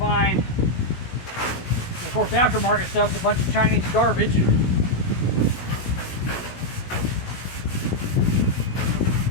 And of course, aftermarket stuff's a bunch of Chinese garbage.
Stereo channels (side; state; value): right; late; 17 ms